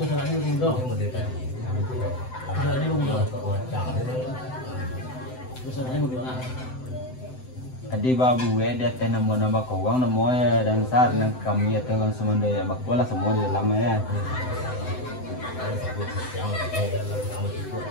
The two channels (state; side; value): late; right; 7.8 ms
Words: salahnya bunda. Salahnya bunda. Salahnya bunda. Adi babu dia teh nama kawang nama dan saat nang kami ya teh langsung mendaya bakola semua di dalam ya.